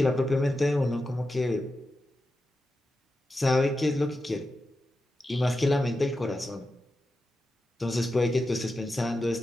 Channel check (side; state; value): both; normal; correlation 0.90